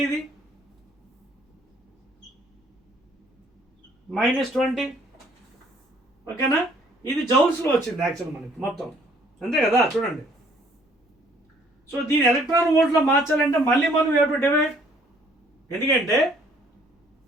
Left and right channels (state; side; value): normal; both; correlation 0.61